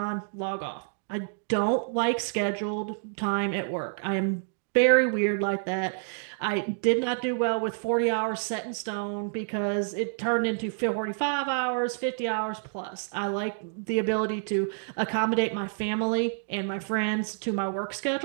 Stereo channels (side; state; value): left; silent; digital silence